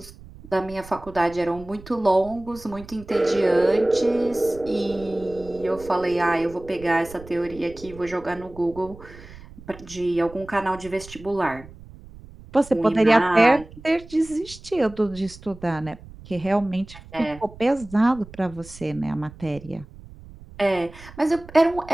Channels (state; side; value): noise; right; rumble, 18 dB below the sound